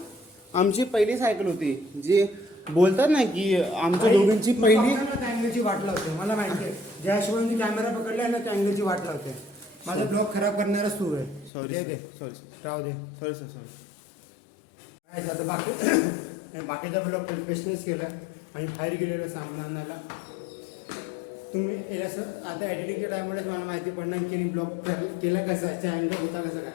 आमची पहिली सायकल होती. जी बोलतात ना की आमच्या दोघांची पहिली. अँगलची वाट लावते मला माहिती आहे. ज्या हिशोबाने कॅमेरा पकडला ना त्या अँगलची वाट लावते. माझा ब्लॉग खराब करणारच तू आहे. दे सॉरी राहू दे. सॉरी काय झालं बाकी? आणि बाकीचा ब्लॉग प्रोफेशनल्स केला आणि बाहेर गेलेला सामान आणायला. तुम्ही हे असं आता एडिटिंगच्या टायमलाच मला माहिती पडणार की ब्लॉग केलं कसं आहे, अँगल होता कसं काय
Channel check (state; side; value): drops out; right; at 11.5 s